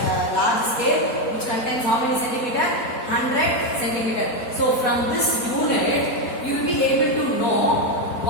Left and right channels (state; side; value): late; right; 4.2 ms